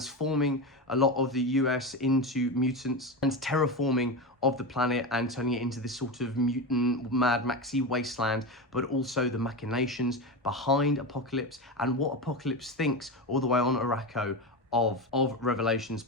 a lot of the US into mutants, and terraforming of the planet and turning it into this sort of mutant Mad Maxy wasteland, but also the machinations behind Apocalypse and what Apocalypse thinks all the way on Araco of Revelation's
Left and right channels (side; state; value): both; normal; correlation 0.19